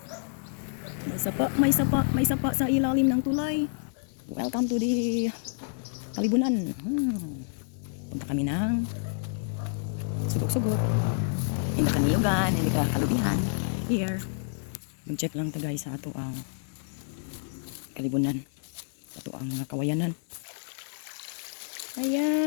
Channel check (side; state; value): right; silent; digital silence